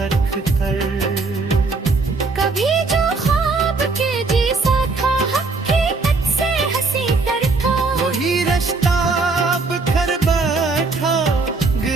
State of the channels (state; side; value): quieter; left; 3.9 dB